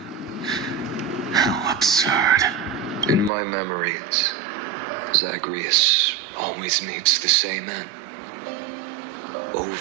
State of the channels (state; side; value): drops out; left; at 3.3 s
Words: How absurd. In my memories, Zagreus always meets the same end.